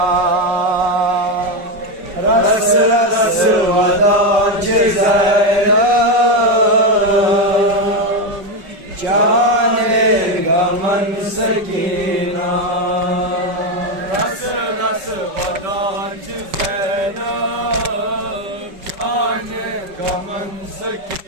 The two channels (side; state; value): left; late; 5.2 ms